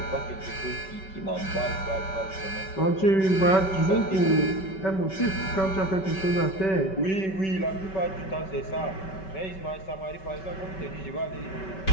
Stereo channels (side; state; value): right; late; 5.2 ms